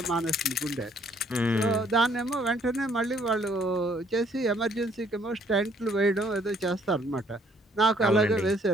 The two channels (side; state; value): both; normal; correlation 0.64